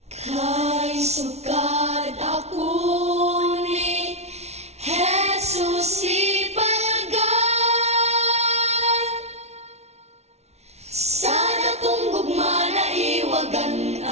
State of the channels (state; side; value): late; left; 0.31 ms